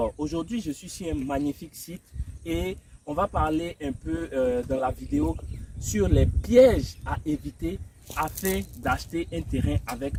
aujourd'hui, je suis sur un magnifique site et on va parler un peu dans la vidéo sur les pièges à éviter afin d'acheter un terrain avec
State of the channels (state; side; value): identical; both; correlation 1.00